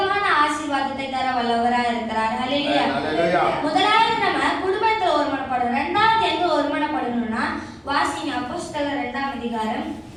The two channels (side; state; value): both; identical; correlation 1.00